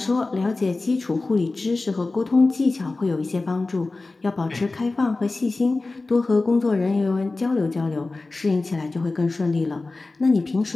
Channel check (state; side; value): quieter; right; 3.4 dB